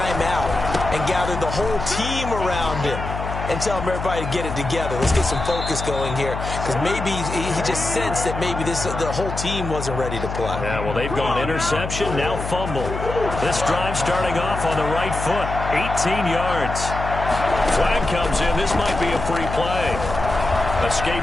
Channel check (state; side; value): noise; left; hum, 6 dB below the sound